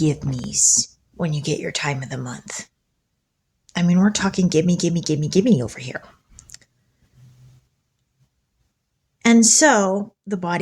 me's when you get your time of the month. I mean, we're talking gimme, gimme, gimme, gimme over here. And so the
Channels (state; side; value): identical; both; correlation 1.00